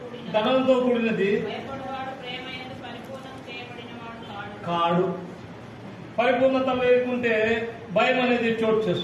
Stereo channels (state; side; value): identical; both; correlation 1.00